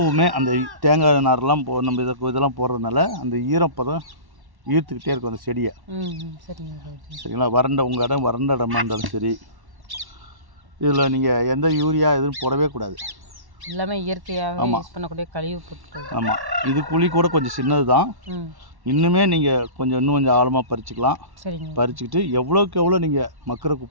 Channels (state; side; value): late; left; 1.1 ms